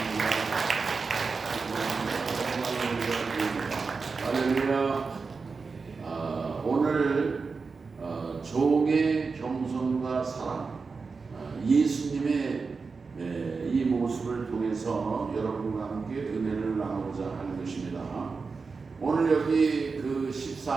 할렐루야. 오늘 종의 겸손과 사랑, 예수님의 이 모습을 통해서 여러분과 함께 은혜를 나누고자 하는 것입니다. 오늘 여기 그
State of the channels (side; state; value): left; quieter; 4.6 dB